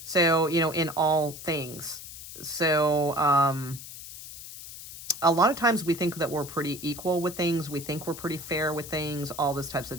So, you know, in all things. So, a lot of times we think that we're pretty equal with things. We think we're pretty fair with things, all those types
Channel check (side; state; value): left; noise; hiss, 13 dB below the sound